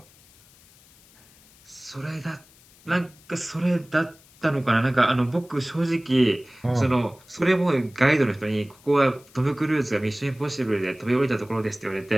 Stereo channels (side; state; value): left; noise; hiss, 27 dB below the sound